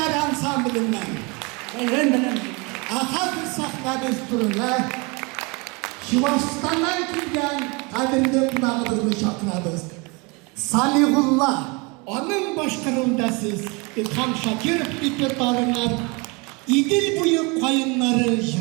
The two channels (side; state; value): left; quieter; 28.8 dB